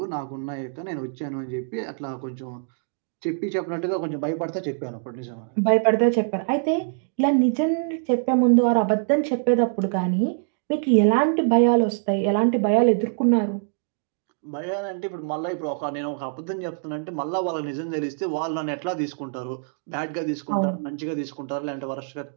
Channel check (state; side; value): silent; left; digital silence